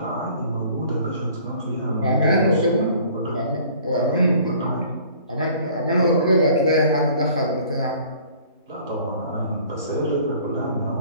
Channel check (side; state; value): both; inverted; correlation -0.52